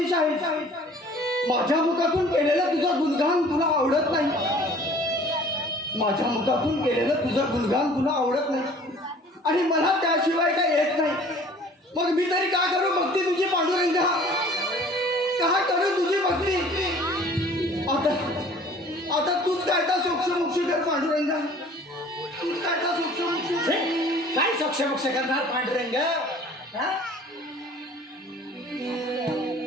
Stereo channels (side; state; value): both; normal; correlation 0.50